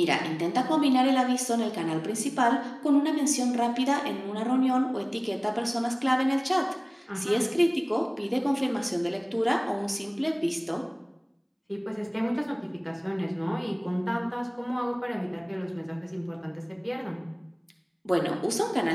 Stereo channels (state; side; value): identical; both; correlation 1.00